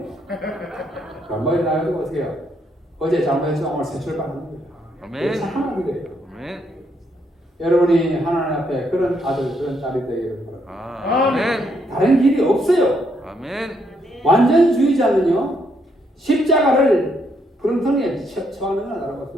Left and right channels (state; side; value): normal; both; correlation 0.74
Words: 머리 나가지고 어떻게 해요? 어제 잘못해서 오늘 새 출발하는 거예요. 아멘. 착한 아들이에요. 아멘. 여러분이 하나님 앞에 그런 아들 그런 딸이 되기를 바랍니다. 아멘. 다른 길이 없어요. 아멘. 완전주의자는요 십자가를 부렁텅이에 처하는 건